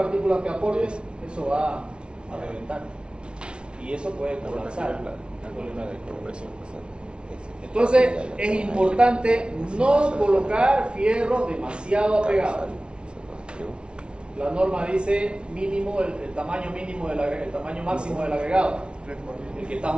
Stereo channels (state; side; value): late; left; 0.057 ms